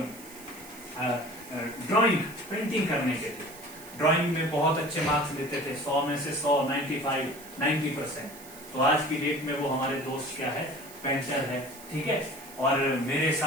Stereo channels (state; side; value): noise; right; hiss, 17 dB below the sound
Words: ड्राइंग पेंटिंग करने के थे। ड्राइंग में बहुत अच्छे मार्क्स लेते थे, 100 में से 100, 95, 90%। तो आज की डेट में वो हमारे दोस्त क्या है? पेंटर है, ठीक है। और मेरे